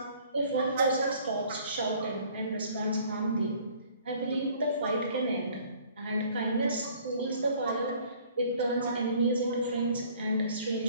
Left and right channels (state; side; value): inverted; both; correlation -0.55